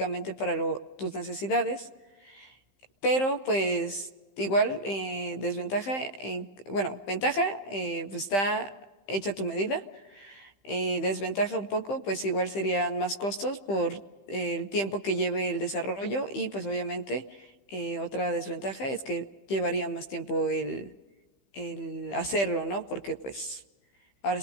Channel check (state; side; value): late; right; 15 ms